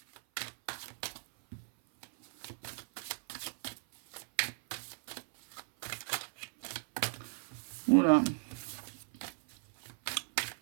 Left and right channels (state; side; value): silent; left; 54 dB below the other